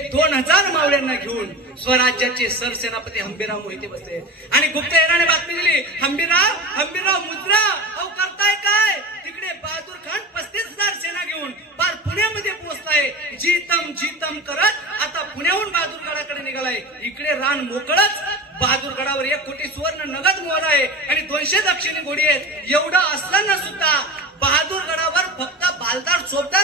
2,000 मावळ्यांना घेऊन स्वराज्याचे सरसेनापती हंबीरराव मोहिते बसले. आणि गुप्तहेराने बातमी दिली, हंबीरराव मुद्रा, अहो करताय काय? तिकडे बहादूर खान 35,000 सेना घेऊन पार पुण्यामध्ये पोहोचलाय. जीतम जीतम करत आता पुण्याहून बहादूरगडाकडे निघालाय. इकडे रान मोकळच, बहादूरगडावर 1 कोटी सुवर्ण नगद मोहर आहे आणि 200 दक्षिणी घोडी आहेत. एवढं असताना सुद्धा बहादूरगडावर फक्त बालदार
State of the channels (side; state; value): both; normal; correlation 0.30